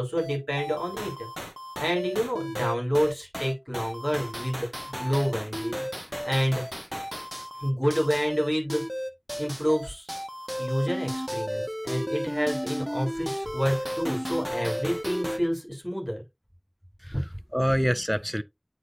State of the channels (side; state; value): both; identical; correlation 1.00